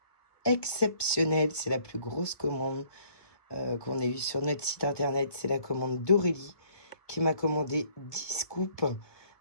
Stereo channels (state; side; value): late; right; 1.2 ms